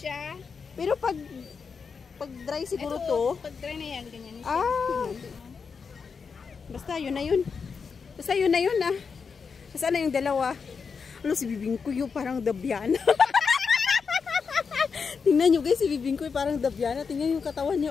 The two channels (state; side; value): quieter; right; 5.6 dB